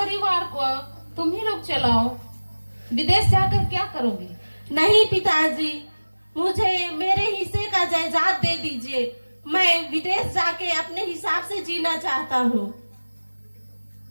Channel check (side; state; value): both; inverted; correlation -1.00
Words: को तुम ही लोग चलाओ। विदेश जाकर क्या करोगे? नहीं पिताजी, मुझे मेरे हिस्से का जायदाद दे दीजिए। मैं विदेश जाके अपने हिसाब से जीना चाहता हूँ।